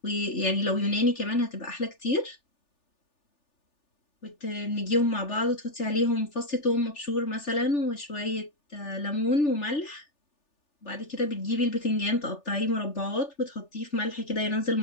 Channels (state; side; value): late; right; 3.4 ms